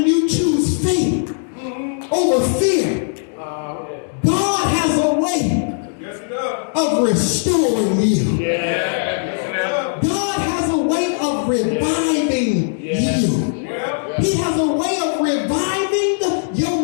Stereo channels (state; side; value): silent; right; digital silence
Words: you choose faith over fear, God has a way of restoring you. God has a way of reviving you. He has a way of reviving